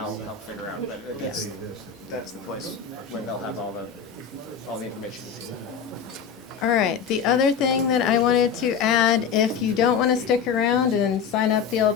help figure out, but that's the place where they'll have all the information. All right, the other thing that I wanted to add, if you don't want to stick around and sign up the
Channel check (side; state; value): right; quieter; 6.9 dB